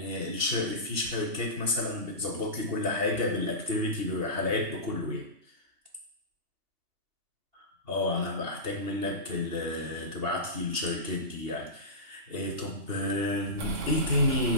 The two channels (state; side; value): late; left; 2.8 ms